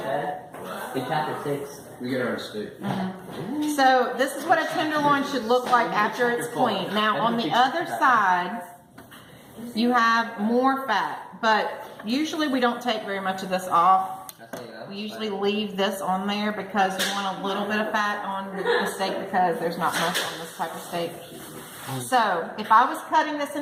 said? In chapter 6. We get our steak. So this is what a tenderloin should look like after it's cleaned. Now on the other side, you have more fat, but usually we don't take very much of this off. We usually leave this on there because we want a little bit of fat on the steak because there's not much on this type of steak. So if I was cutting this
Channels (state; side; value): identical; both; correlation 1.00